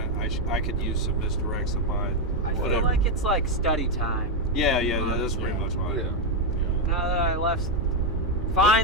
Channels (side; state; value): both; normal; correlation 0.04